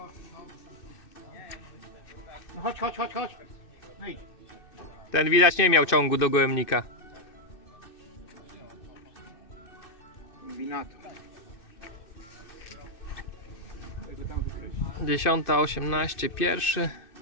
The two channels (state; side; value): late; right; 2.6 ms